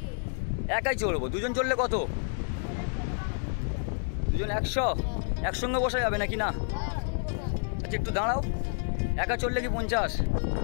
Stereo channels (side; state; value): right; silent; 58 dB below the other